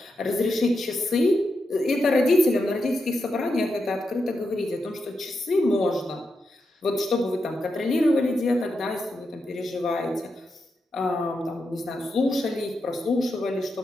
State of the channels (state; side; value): normal; both; correlation 0.86